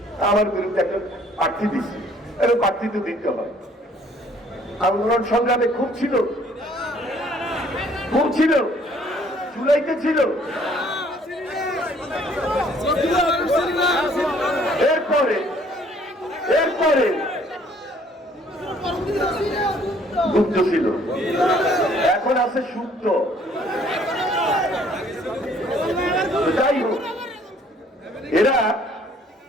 আমার বিরুদ্ধে একটা প্রার্থী দিচ্ছি, এবং প্রার্থী তো দিতে হয়। আন্দোলন সংগ্রামে খুব ছিল, খুব ছিল, জুলাইতে ছিল। এরপরে এরপরে গুপ্ত ছিল, এখন আছে সুপ্ত। যাই হোক, এরা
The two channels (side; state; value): both; normal; correlation 0.60